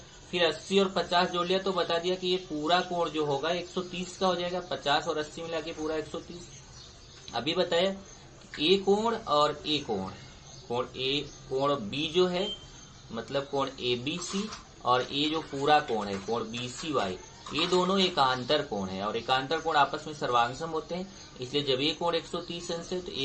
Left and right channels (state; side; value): identical; both; correlation 1.00